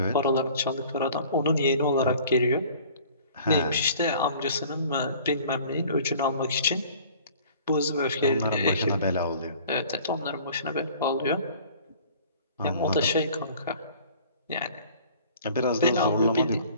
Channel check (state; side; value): inverted; both; correlation -0.50